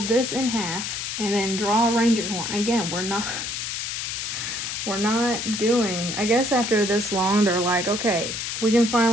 this in half and then draw a reindeer horn. Again, we're not doing, I guess after this long, they're like, okay, we can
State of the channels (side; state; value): left; noise; hiss, 4 dB below the sound